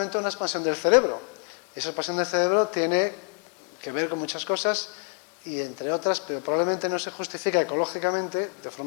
una expansión del cerebro. Esa expansión del cerebro tiene que ver con muchas cosas y, entre otras, pero probablemente no se justifica ecológicamente de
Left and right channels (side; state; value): right; quieter; 38.4 dB